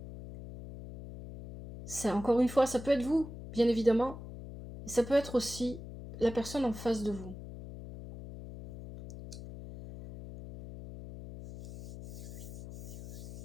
Encore une fois, ça peut être vous, bien évidemment. Et ça peut être aussi la personne en face de vous.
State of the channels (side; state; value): left; noise; hum, 12 dB below the sound